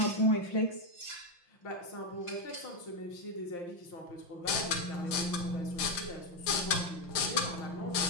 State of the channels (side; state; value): right; late; 5.8 ms